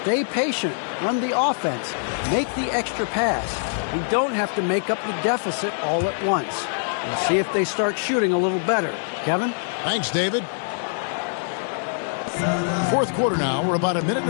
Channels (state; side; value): silent; right; digital silence